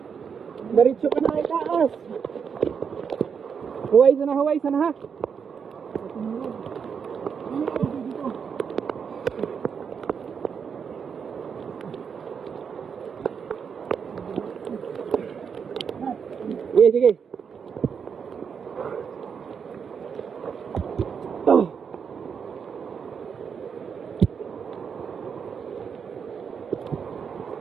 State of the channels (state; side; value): quieter; left; 6.6 dB